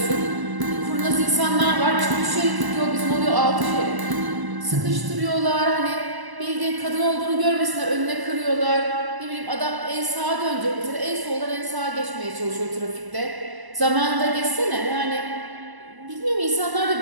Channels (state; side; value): late; left; 1.0 ms